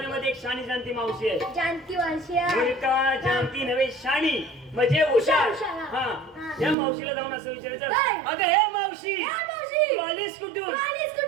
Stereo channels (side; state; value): left; drops out; at 6.8 s